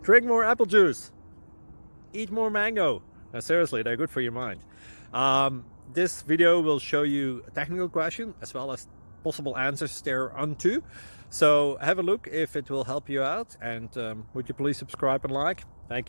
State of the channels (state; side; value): inverted; both; correlation -1.00